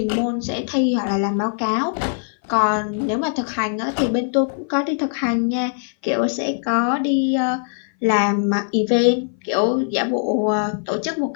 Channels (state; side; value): silent; right; 59 dB below the other